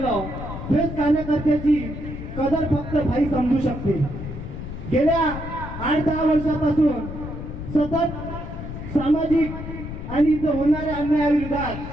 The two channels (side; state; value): left; noise; rumble, 8 dB below the sound